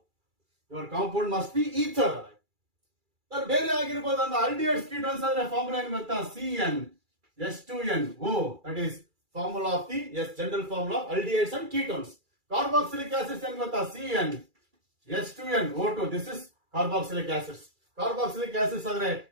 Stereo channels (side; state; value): left; late; 2.3 ms